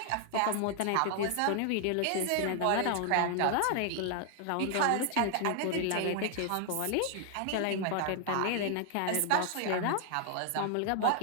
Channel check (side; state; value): both; different; correlation 0.00